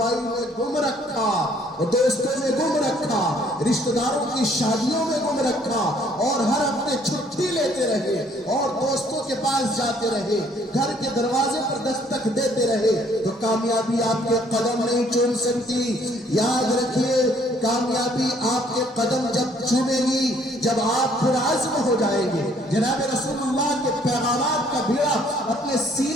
میں گم رکھا، دوستوں میں گم رکھا، رشتہ داروں کی شادیوں میں گم رکھا، اور ہر ہفتے چھٹی لیتے رہے اور دوستوں کے پاس جاتے رہے، گھر کے دروازے پر دستک دیتے رہے، تو کامیابی آپ کے قدم نہیں چوم سکتی۔ یاد رکھیے، کامیابی آپ کے قدم جب چومے گی جب آپ پرعزم ہو جائیں گے، جناب رسول اللہ کے پیغامات کا بیڑا اپنے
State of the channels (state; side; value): normal; both; correlation 0.63